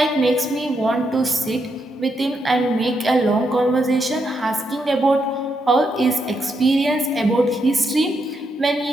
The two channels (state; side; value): normal; both; correlation 0.80